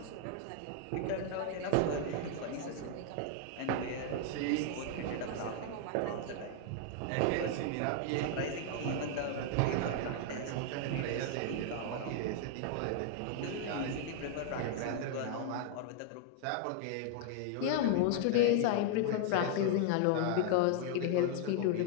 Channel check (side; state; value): both; different; correlation 0.00